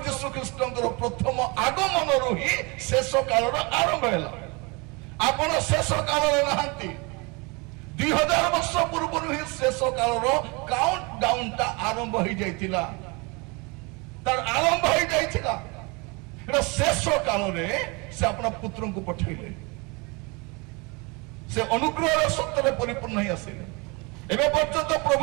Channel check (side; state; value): left; quieter; 28.4 dB